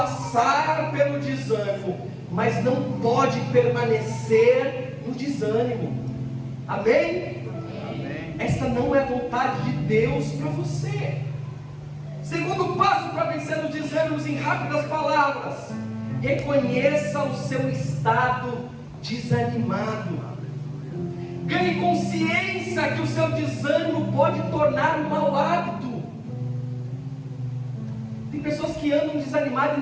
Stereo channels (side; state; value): both; identical; correlation 1.00